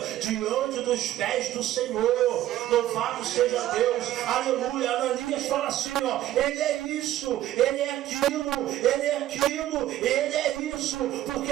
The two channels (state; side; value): quieter; left; 13.7 dB